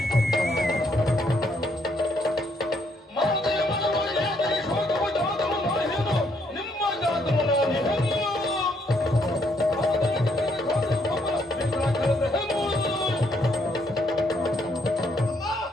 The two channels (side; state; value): both; normal; correlation 0.72